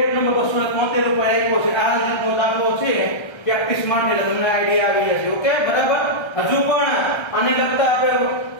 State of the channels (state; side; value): late; right; 1.3 ms